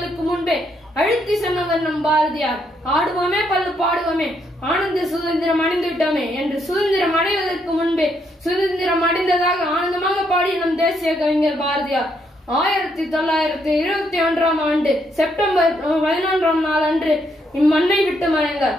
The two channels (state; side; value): normal; both; correlation 0.75